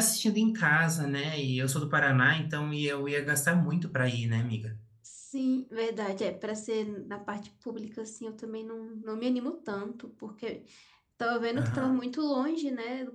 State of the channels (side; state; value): both; identical; correlation 1.00